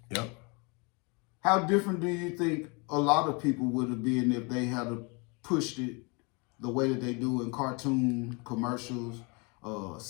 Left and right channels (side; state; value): right; quieter; 30.8 dB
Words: Yep. How different do you think a lot of people would have been if they had pushed it the way that they do in cartoon commercials,